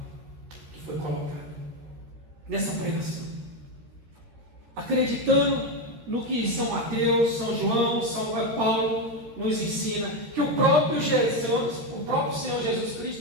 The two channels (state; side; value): late; left; 14 ms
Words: que foi colocada, nessa pregação, acreditando no que São Mateus, São João, São Paulo nos ensina, que o próprio Senhor Jesus